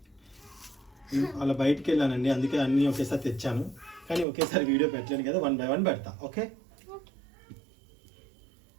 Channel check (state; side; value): drops out; left; at 4.2 s